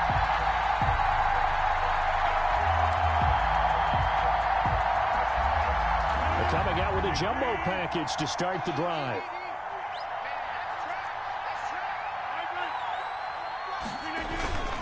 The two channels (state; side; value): identical; both; correlation 1.00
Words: They're coming out with a jumbo package to start the drive.